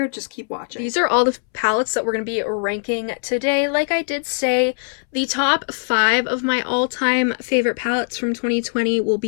just keep watching. These are all the palettes that we're going to be ranking today. Like I did say, the top 5 of my all-time favorite palettes from 2020 will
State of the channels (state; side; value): silent; right; 64 dB below the other